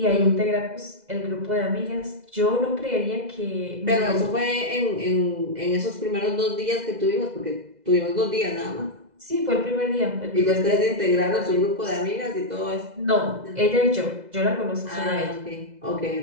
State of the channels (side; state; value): left; late; 2.0 ms